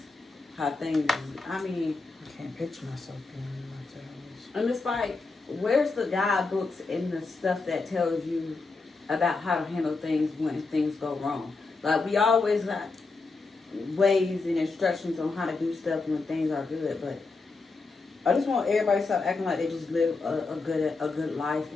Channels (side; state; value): right; quieter; 3.9 dB